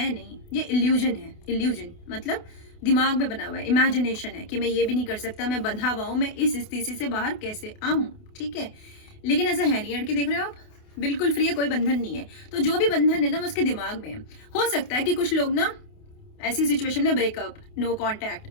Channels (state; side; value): late; right; 28 ms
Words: नहीं, ये इल्यूजन है। इल्यूजन मतलब दिमाग में बना हुआ है, इमेजिनेशन है कि मैं ये भी नहीं कर सकता, मैं बंधा हुआ हूँ, मैं इस स्थिति से बाहर कैसे आऊँ, ठीक है। लेकिन ऐसा है नहीं, लड़की देख रहे हो आप, बिल्कुल फ्री है, कोई बंधन नहीं है। तो जो भी बंधन है ना, वो उसके दिमाग में है। हो सकता है कि कुछ लोग ना ऐसी सिचुएशन में ब्रेकअप, नो